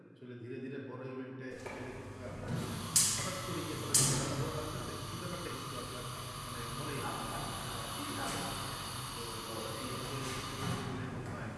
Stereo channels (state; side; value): identical; both; correlation 1.00